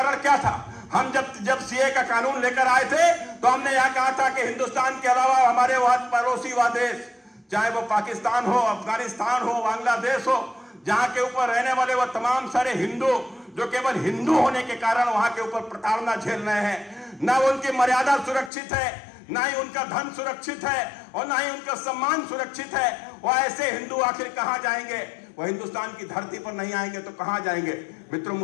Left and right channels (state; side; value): drops out; right; at 18.5 s